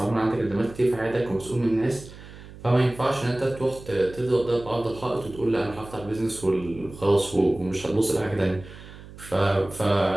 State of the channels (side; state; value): right; noise; hum, 17 dB below the sound